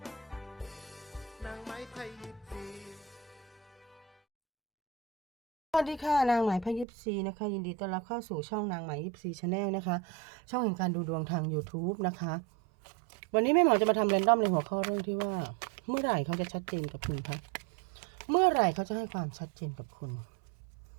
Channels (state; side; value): drops out; left; at 6.9 s